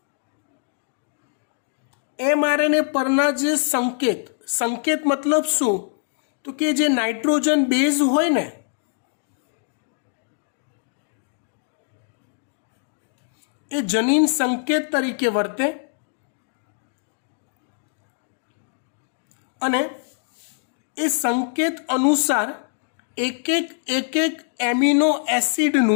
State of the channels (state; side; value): silent; right; 56 dB below the other